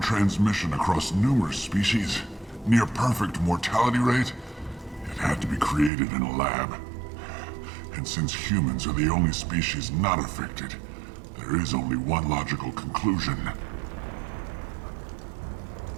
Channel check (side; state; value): left; drops out; at 5.9 s